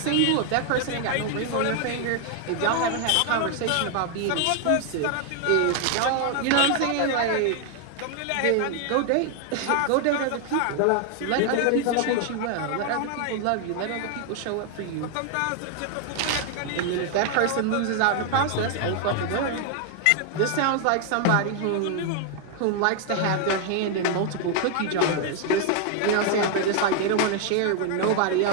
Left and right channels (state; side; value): different; both; correlation 0.00